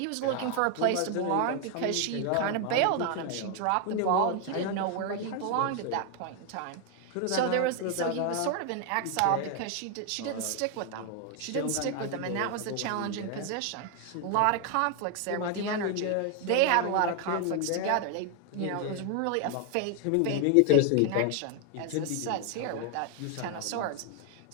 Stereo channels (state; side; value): different; both; correlation 0.01